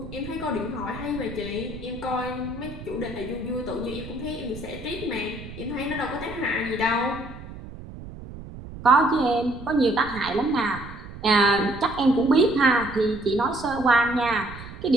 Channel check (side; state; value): right; noise; rumble, 13 dB below the sound